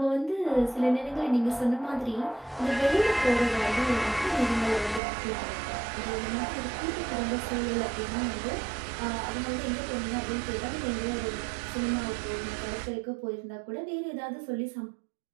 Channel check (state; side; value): drops out; left; at 5.0 s